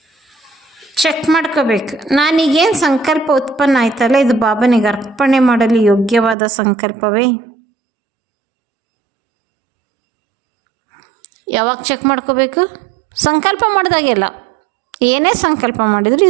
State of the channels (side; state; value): left; drops out; at 6.4 s